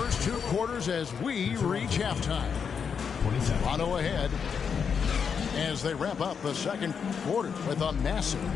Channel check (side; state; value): right; quieter; 6.6 dB